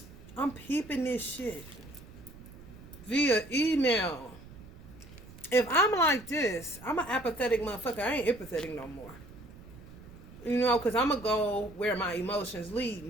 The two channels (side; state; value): right; noise; rumble, 18 dB below the sound